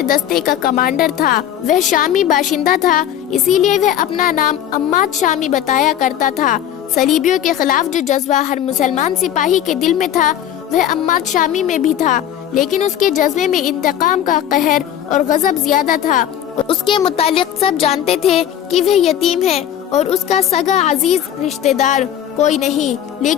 دستے کا کمانڈر تھا۔ وہ شامی باشندہ تھا، اسی لیے وہ اپنا نام عماد شامی بتایا کرتا تھا۔ صلیبیوں کے خلاف جو جذبہ ہر مسلمان سپاہی کے دل میں تھا وہ عماد شامی میں بھی تھا، لیکن اس کے جذبے میں انتقام کا قہر اور غضب زیادہ تھا۔ اس کے متعلق سب جانتے تھے کہ وہ یتیم ہے اور اس کا سگا عزیز رشتہ دار کوئی نہیں،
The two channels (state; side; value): quieter; right; 10.7 dB